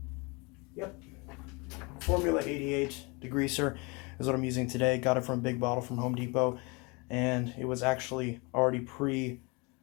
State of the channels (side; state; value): right; quieter; 28.6 dB